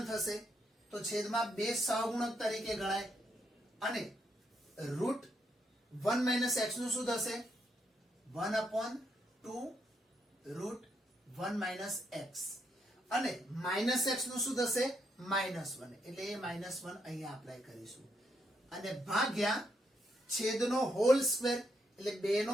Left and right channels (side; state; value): both; normal; correlation 0.77